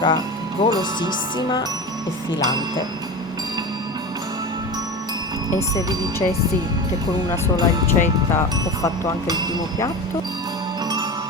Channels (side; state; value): both; normal; correlation 0.27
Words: golosissima e filante. E se vi dicessi che con una sola ricetta ho fatto anche il primo piatto?